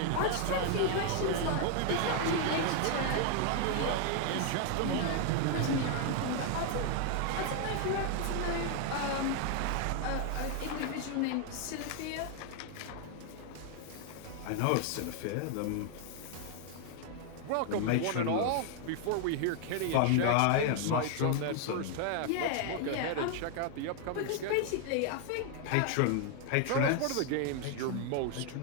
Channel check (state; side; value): different; both; correlation 0.00